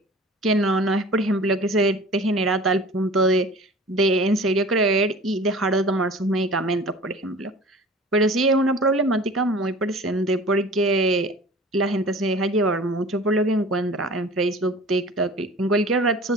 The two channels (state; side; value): normal; both; correlation 0.43